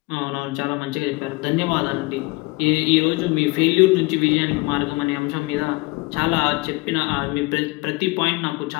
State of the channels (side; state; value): right; quieter; 24.8 dB